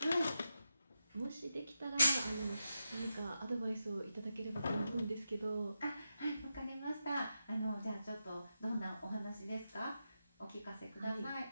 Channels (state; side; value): inverted; both; correlation -0.88